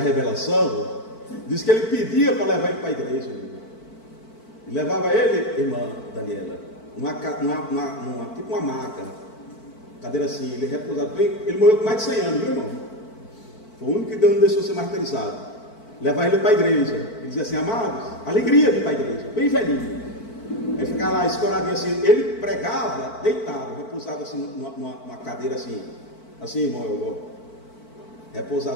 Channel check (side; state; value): right; late; 4.5 ms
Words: Diz que ele pedia para levar ele para a igreja, e levava ele, irmã Daniela, tipo uma maca, cadeira assim, ele repousado bem. Ele morreu com mais de 100 anos, viu, irmão? Foi o único que Deus não deixou ser martirizado. Levar ele para a igreja, ele dizia assim: amados, alegria de ir para a igreja, bem velhinho. Ele ficava lá escoradinho assim, ele pregava deitado, repousado assim, numa cadeira assim, irmão,